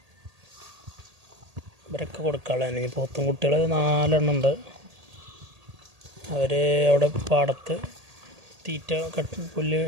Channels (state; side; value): late; left; 1.8 ms